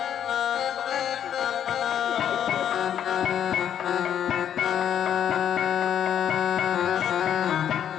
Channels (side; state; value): right; quieter; 9.5 dB